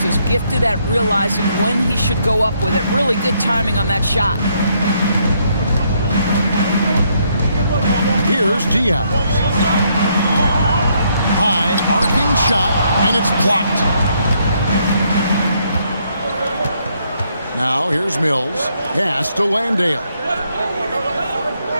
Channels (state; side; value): inverted; both; correlation -0.73